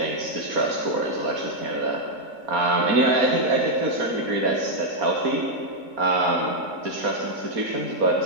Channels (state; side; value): late; left; 4.3 ms